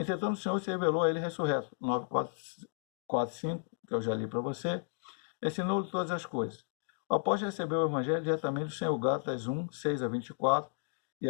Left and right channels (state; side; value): silent; right; digital silence